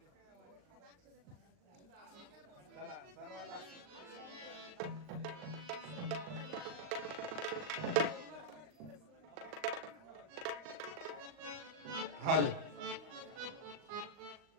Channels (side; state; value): left; late; 39 ms